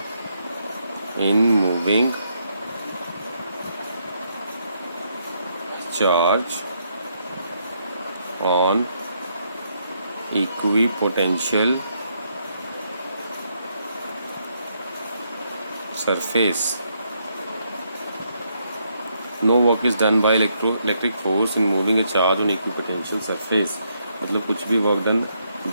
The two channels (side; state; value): both; inverted; correlation -0.76